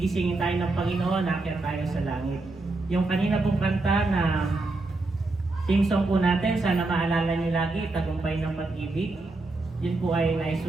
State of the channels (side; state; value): left; quieter; 3.2 dB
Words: tayo ng Panginoon, aakyat tayo sa langit. Yung kanina pong kanta na team song po natin, sana maalala niyo lagi, Tagumpay ng Pag-ibig. Yun po ay